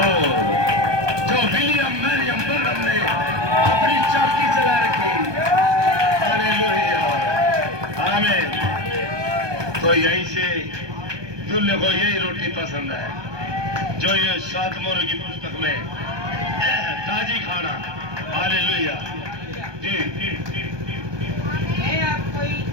जो विलियम मैरियम बर्नम ने अपनी चाकी चला रखी। हालेलुया, आमीन। तो यहीं से दूल्हे को यही रोटी पसंद है जो ये 7 मोहर की पुस्तक में ताजी खाना। हालेलुया जी, मैं आपकी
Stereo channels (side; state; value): left; late; 1.2 ms